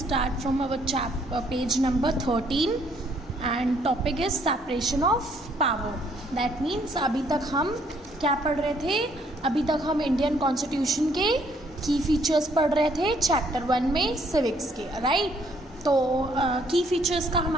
from our page number 13 and topic is separation of power. That means अभी तक हम क्या पढ़ रहे थे? अभी तक हम इंडियन कॉन्स्टिट्यूशन के की फीचर्स पढ़ रहे थे चैप्टर 1 में सिविक्स के, राइट? तो की फीचर्स का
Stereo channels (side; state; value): both; normal; correlation 0.66